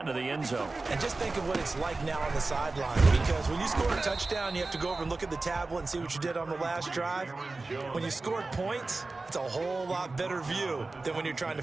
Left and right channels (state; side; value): quieter; left; 3.5 dB